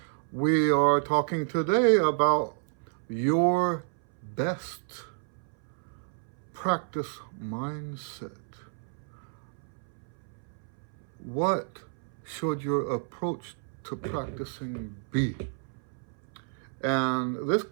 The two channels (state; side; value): silent; left; 58 dB below the other